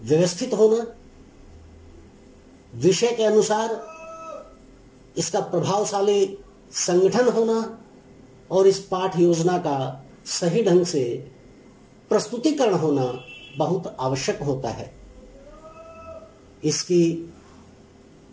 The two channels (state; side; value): identical; both; correlation 1.00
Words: होना, विषय के अनुसार इसका प्रभावशाली संगठन होना और इस पाठ योजना का सही ढंग से प्रस्तुतिकरण होना बहुत आवश्यक होता है। इसकी